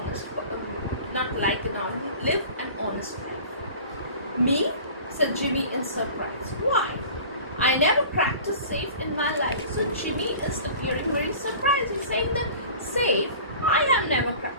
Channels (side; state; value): both; inverted; correlation -0.42